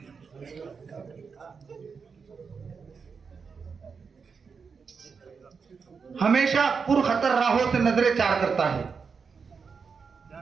हमेशा पुरखतर राहों से नजरें चार करता है,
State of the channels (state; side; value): quieter; left; 5.5 dB